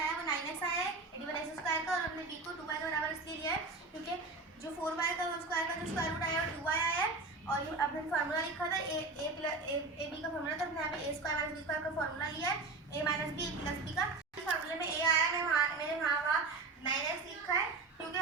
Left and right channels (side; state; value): left; quieter; 3.7 dB